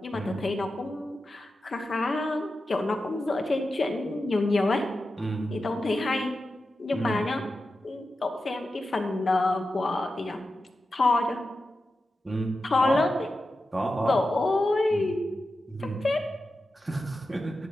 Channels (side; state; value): both; normal; correlation 0.91